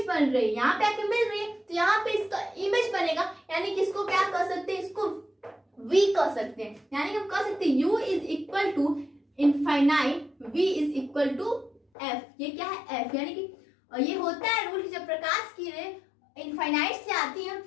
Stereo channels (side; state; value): right; drops out; at 11.8 s